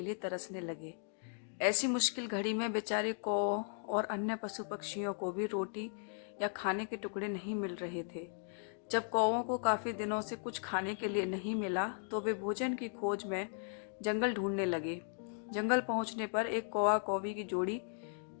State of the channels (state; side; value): silent; right; 53 dB below the other